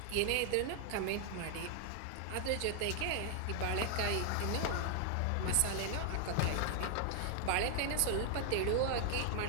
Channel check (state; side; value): different; both; correlation 0.00